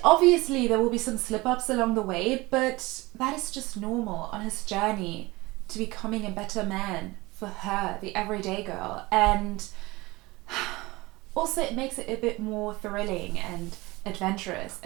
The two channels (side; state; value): left; quieter; 21.8 dB